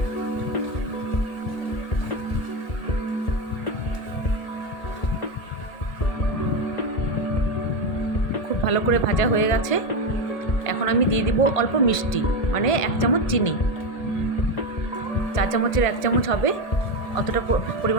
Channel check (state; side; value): late; right; 1.8 ms